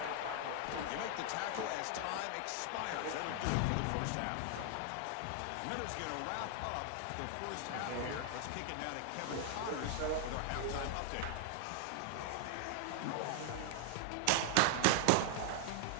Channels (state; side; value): different; both; correlation 0.00